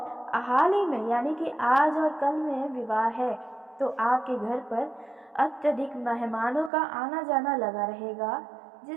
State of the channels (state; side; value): drops out; left; at 6.7 s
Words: हाल ही में यानी कि आज और कल में विवाह है तो आपके घर पर अत्यधिक मेहमानों का आना जाना लगा रहेगा,